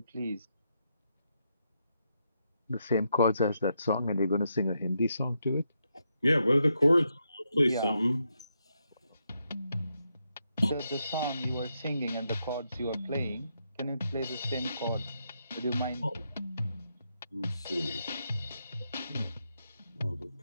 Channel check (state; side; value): inverted; both; correlation -0.81